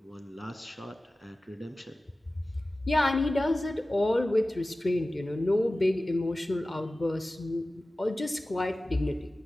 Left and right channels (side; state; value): both; normal; correlation 0.96